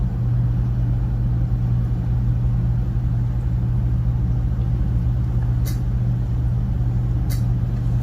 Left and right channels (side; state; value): both; identical; correlation 1.00